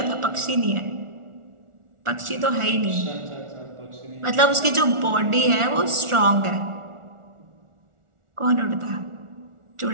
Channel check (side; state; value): left; late; 1.4 ms